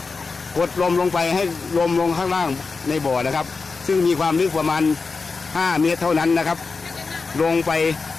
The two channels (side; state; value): right; quieter; 4.4 dB